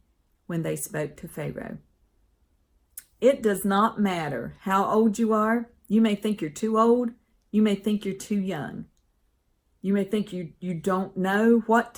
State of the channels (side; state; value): both; identical; correlation 1.00